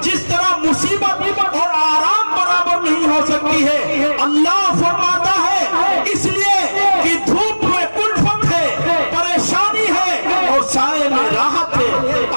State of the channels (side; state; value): both; inverted; correlation -1.00